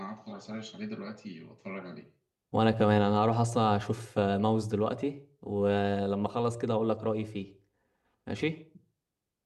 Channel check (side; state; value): both; identical; correlation 1.00